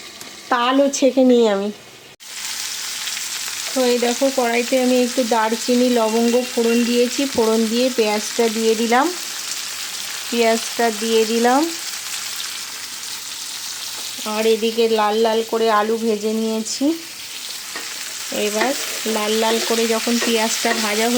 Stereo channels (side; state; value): both; identical; correlation 1.00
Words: তালও ছেঁকে নিই আমি। তো এই দেখো কড়াইতে আমি একটু দারচিনি লবঙ্গ ফোড়ন দিয়েছি, ফোড়ন দিয়ে পেঁয়াজটা দিয়ে দিলাম, পেঁয়াজটা দিয়ে দিলাম। আর এদিকে লাল লাল করে আলু ভেজে নিয়েছি। এবার লাল লাল করে যখন পেঁয়াজটা ভাজা